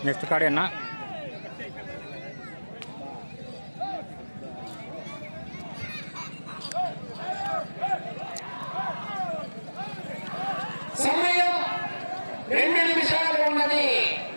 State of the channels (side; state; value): both; inverted; correlation -1.00